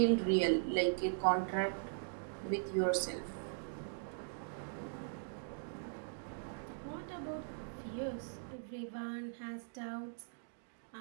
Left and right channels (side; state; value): left; silent; digital silence